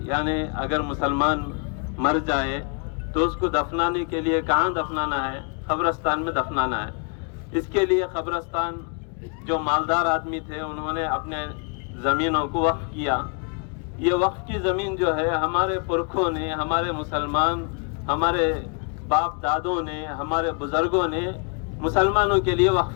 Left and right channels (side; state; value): right; quieter; 38.4 dB